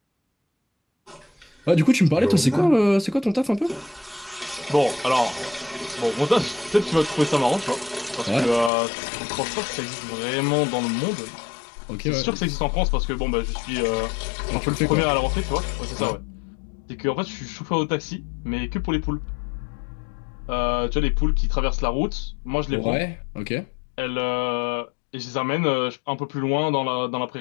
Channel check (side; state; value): right; drops out; at 8.7 s